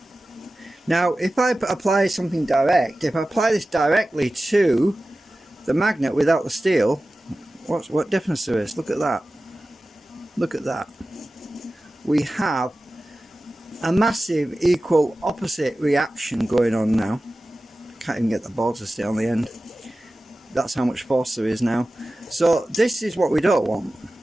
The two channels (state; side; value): normal; both; correlation 0.96